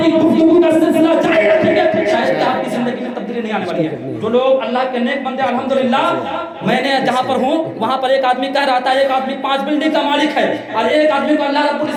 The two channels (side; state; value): both; identical; correlation 1.00